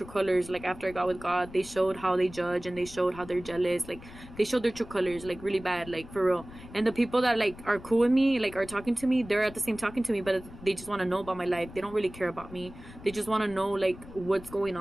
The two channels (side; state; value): left; noise; rumble, 17 dB below the sound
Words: colors. Like, after I got with God, they showed how they judge, and they showed how they're jealous. Like, they showed their true colors, like, really bad, like, for real. And the people that, like, are cool with me, like, are talking to me, they're at the same talking to me, but they just want to know about my life. They don't really care about me. They just want to know, like, what's going